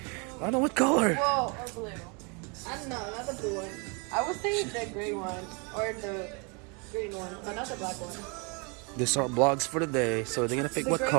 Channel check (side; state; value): left; quieter; 32.7 dB